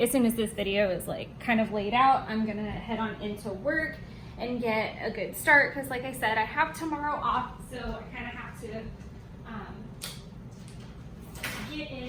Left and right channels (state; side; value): identical; both; correlation 1.00